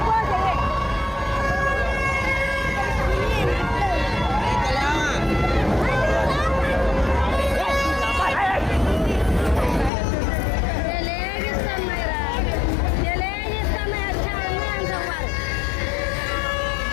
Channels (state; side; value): drops out; right; at 9.9 s